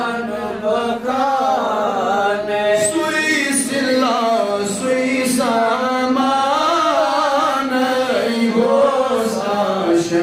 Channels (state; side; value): identical; both; correlation 1.00